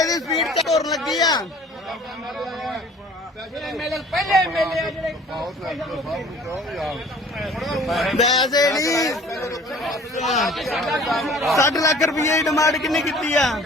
ਦੀ ਸਪੀਡ ਤੇ ਤੁਰਨ ਲੱਗੀ ਆ ਐਮਐਲਏ ਪਹਿਲੇ ਐਮਐਲਏ ਆ ਜਿਹੜੇ ਵੈਸੇ ਨਹੀਂ 60 ਲੱਖ ਰੁਪਏ ਦੀ ਡਿਮਾਂਡ ਕਿੰਨੀ ਕੀਤੀ ਆ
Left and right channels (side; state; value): both; normal; correlation 0.49